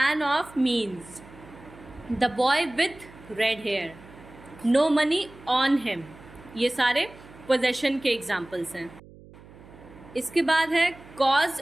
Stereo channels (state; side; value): noise; right; hum, 21 dB below the sound